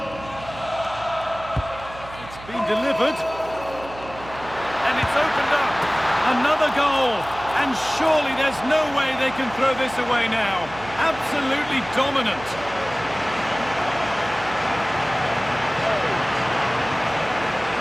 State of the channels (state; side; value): noise; right; hum, 16 dB below the sound